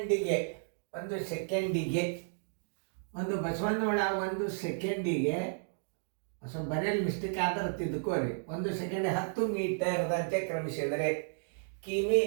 ಸ್ವಲ್ಪ ಬರೆಯಲ್ಲಿ ಮಿಸ್ಟೇಕ್ ಆದ್ರೆ ತಿದ್ಕೋರಿ. 1 ಸೆಕೆಂಡ್ 10 ಮೀಟರ್ದಂತೆ ಕ್ರಮಿಸಿದರೆ ಕಿಮಿ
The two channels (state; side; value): silent; left; digital silence